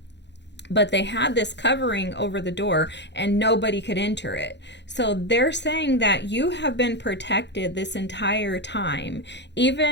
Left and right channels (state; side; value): late; right; 0.51 ms